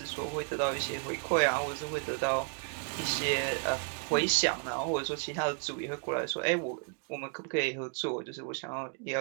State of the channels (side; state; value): left; quieter; 37.5 dB